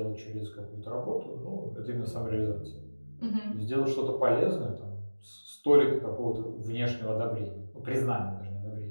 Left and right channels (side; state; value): both; inverted; correlation -1.00